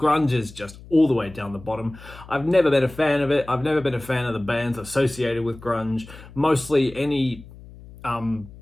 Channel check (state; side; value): noise; left; hum, 19 dB below the sound